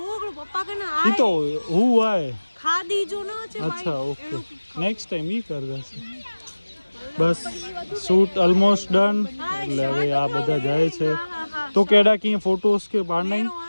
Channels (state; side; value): inverted; both; correlation -1.00